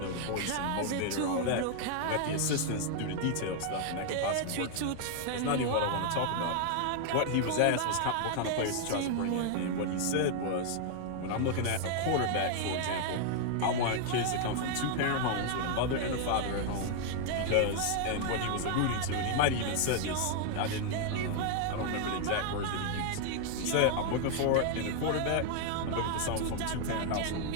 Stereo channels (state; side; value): different; both; correlation 0.00